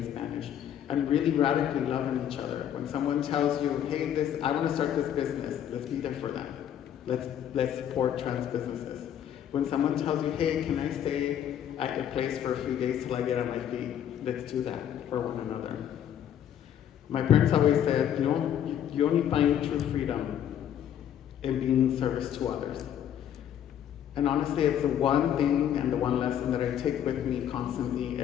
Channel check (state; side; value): quieter; right; 10.0 dB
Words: Spanish, and really radically loving each other. When someone tells you, hey, I want to start this business, let's be there for them. Let's support trans businesses. When someone tells you, hey, can I stay at your place for a few days till I get on my feet, let's do that for one another. My parents always said, you only find true freedom in being service to others. And honestly, it's the one thing and the one lesson that I take with me constantly